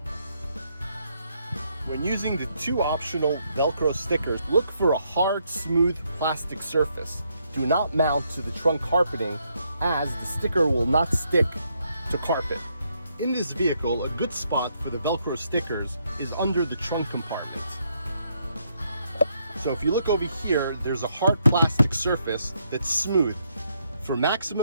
When using the 2 optional Velcro stickers, look for a hard, smooth plastic surface. Do not mount to the trunk carpeting, as the sticker will not stick to carpet. In this vehicle, a good spot for the Velcro stickers is under the trunk compartment. So if you look over here, there's a hard plastic surface that's smooth. For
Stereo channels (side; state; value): both; inverted; correlation -0.75